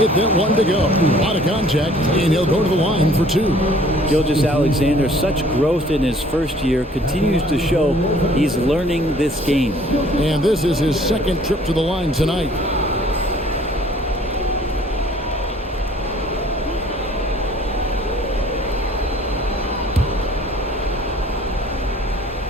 that one to go. A lot of contact, and he'll go to the line for 2. Gilgeous-Alexander, such growth in his first year, continues to show he's learning this game. And this is his second trip to the line tonight.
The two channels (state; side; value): normal; both; correlation 0.55